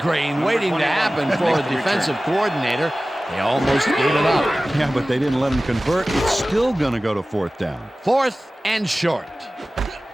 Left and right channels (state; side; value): normal; both; correlation 0.97